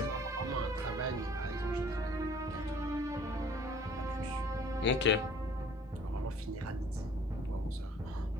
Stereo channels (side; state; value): both; normal; correlation 0.53